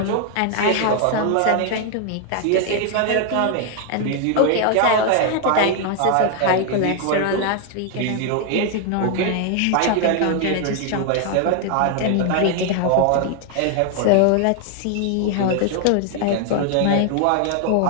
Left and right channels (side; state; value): both; different; correlation 0.00